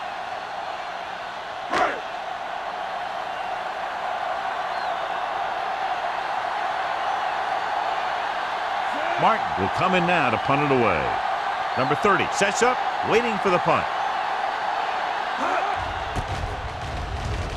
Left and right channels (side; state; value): both; identical; correlation 1.00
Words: Martin will come in now to punt it away. Number 30 sets up, waiting for the punt.